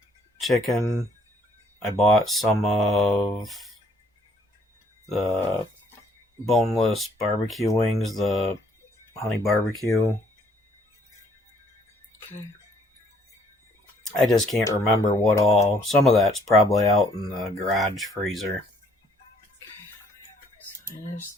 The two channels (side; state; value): both; normal; correlation 0.64